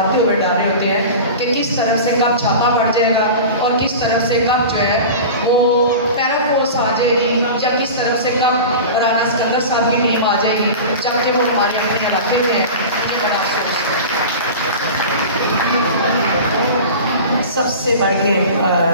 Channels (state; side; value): inverted; both; correlation -0.33